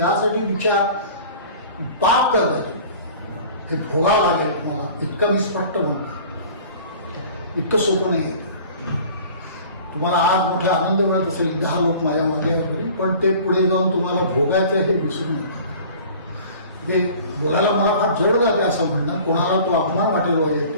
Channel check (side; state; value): both; inverted; correlation -0.45